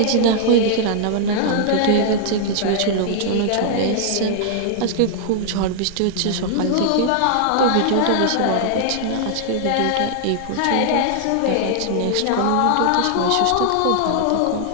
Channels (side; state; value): both; different; correlation -0.01